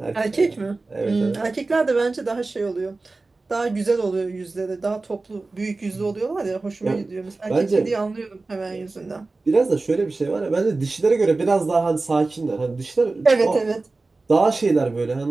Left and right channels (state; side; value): quieter; left; 3.5 dB